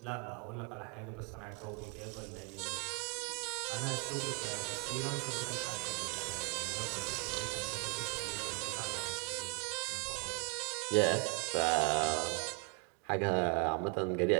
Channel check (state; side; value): quieter; left; 33.2 dB